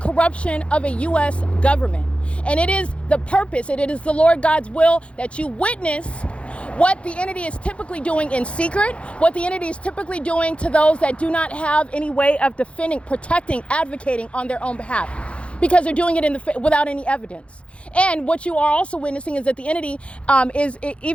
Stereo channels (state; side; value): late; right; 0.060 ms